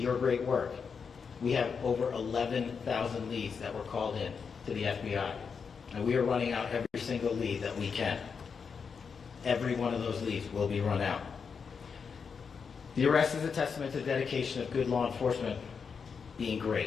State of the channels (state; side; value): quieter; right; 5.9 dB